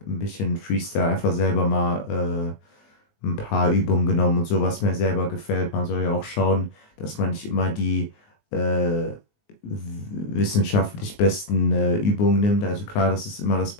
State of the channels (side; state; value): right; late; 19 ms